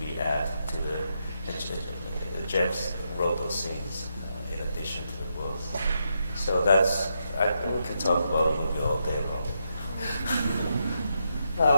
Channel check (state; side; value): inverted; both; correlation -0.82